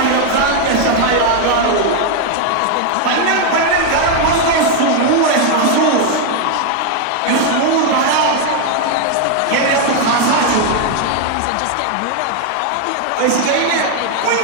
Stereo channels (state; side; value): different; both; correlation 0.01